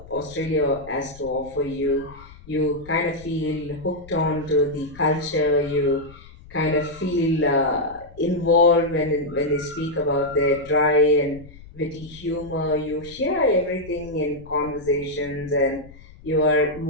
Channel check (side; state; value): left; noise; rumble, 20 dB below the sound